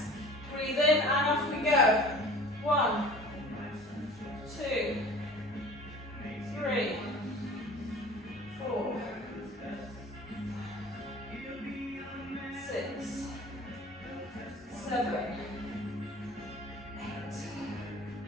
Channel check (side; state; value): both; normal; correlation 0.43